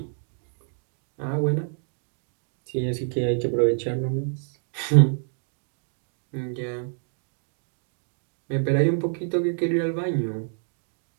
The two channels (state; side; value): silent; left; digital silence